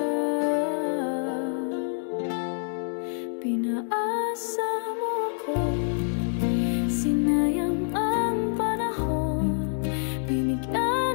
Pinaasa mo ako, sinayang ang panahon, binigyan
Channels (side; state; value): right; silent; digital silence